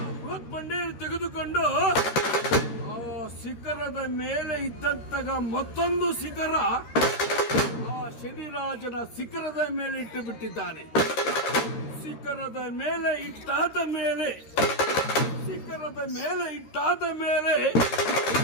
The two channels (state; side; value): late; right; 13 ms